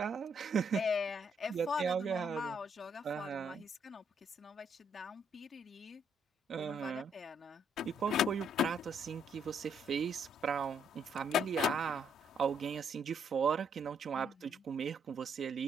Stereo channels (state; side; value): normal; both; correlation 0.71